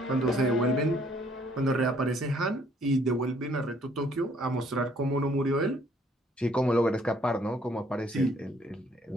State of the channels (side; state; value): both; normal; correlation 0.63